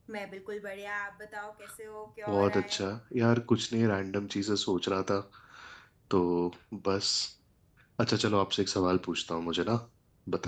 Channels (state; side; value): identical; both; correlation 1.00